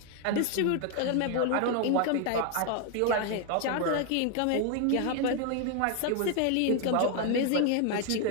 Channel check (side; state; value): both; different; correlation 0.01